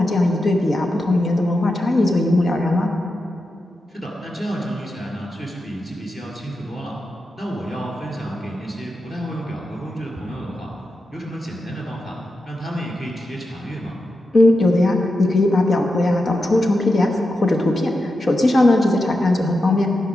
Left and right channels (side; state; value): both; normal; correlation 0.89